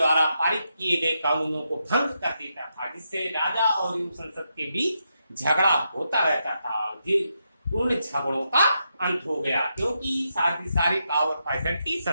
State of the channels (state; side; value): inverted; both; correlation -0.83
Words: पारित किए गए कानूनों को भंग कर देता था, जिससे राजा और संसद के बीच झगड़ा होता रहता था। उन झगड़ों का अंत हो गया, क्योंकि सारी पावर फैसिलिटी